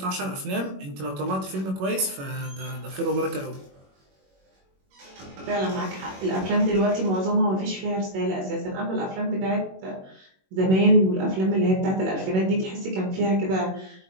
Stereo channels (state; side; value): late; left; 21 ms